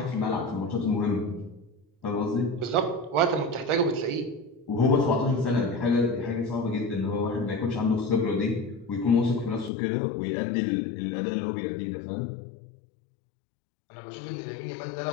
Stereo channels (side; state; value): right; drops out; at 9.7 s